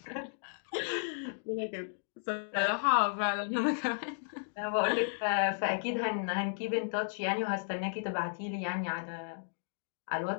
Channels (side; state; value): right; silent; digital silence